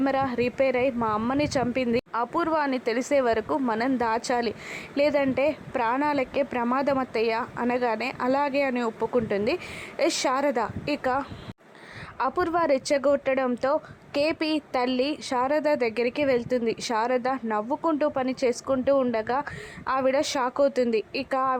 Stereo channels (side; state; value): both; identical; correlation 1.00